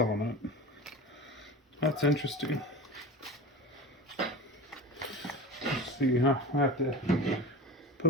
it. That's interesting. Let's see, huh? I have to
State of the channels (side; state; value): both; normal; correlation 0.31